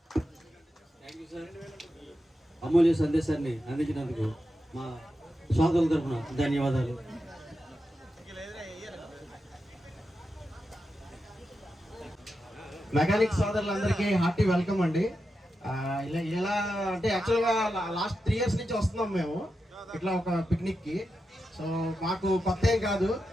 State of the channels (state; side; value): normal; both; correlation 0.89